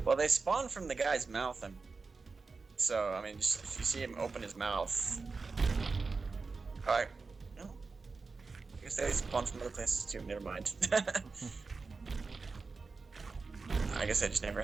Well, they spawn from the guy's mouth, so I mean, just if you see him open his mouth, alright. No, I guess they spawn from other places too. Never mind. I guess I just never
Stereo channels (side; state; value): left; quieter; 4.3 dB